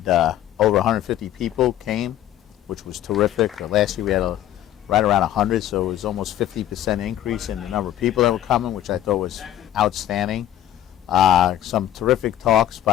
over 150 people came, which was terrific. Last year we had right around 100, so it was almost 50% increase in the number of people that were coming, which I thought was outstanding. Some terrific talks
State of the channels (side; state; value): right; quieter; 12.2 dB